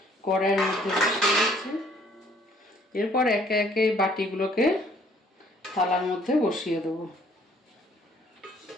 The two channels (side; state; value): both; normal; correlation 0.61